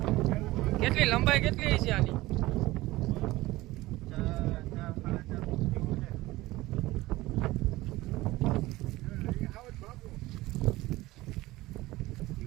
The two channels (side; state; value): left; quieter; 18.6 dB